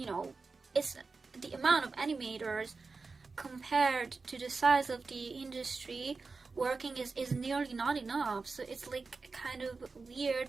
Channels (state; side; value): quieter; left; 4.2 dB